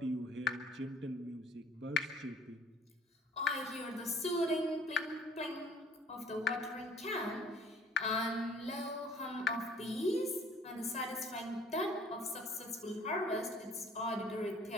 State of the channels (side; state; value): both; normal; correlation 0.55